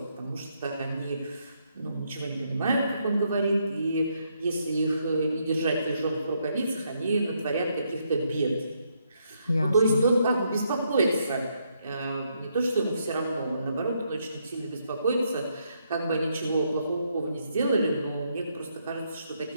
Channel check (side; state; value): both; inverted; correlation -0.76